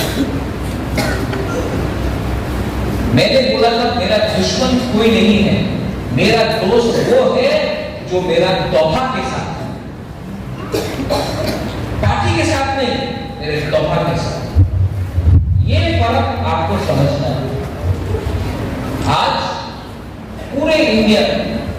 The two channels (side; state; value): both; identical; correlation 1.00